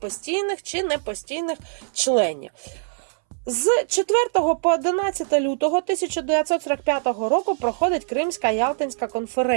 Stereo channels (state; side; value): silent; left; 63 dB below the other